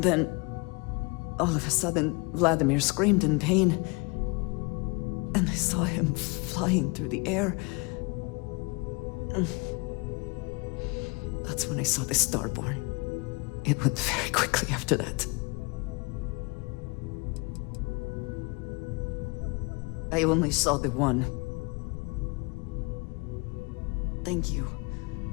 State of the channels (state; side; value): quieter; right; 28.8 dB